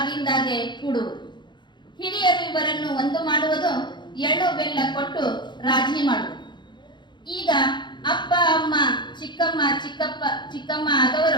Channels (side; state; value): right; late; 0.22 ms